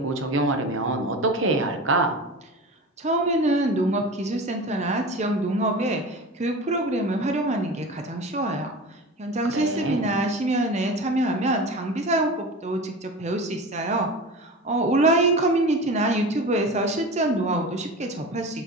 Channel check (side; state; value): both; normal; correlation 0.32